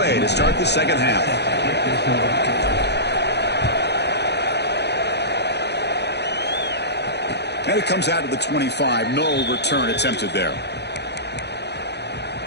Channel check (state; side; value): late; right; 0.49 ms